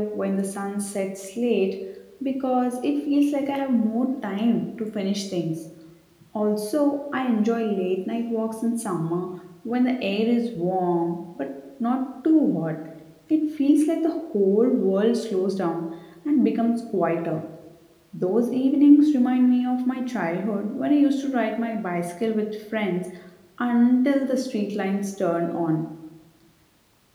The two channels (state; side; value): identical; both; correlation 1.00